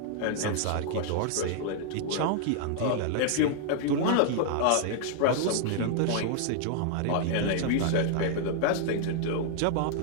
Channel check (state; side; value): different; both; correlation -0.01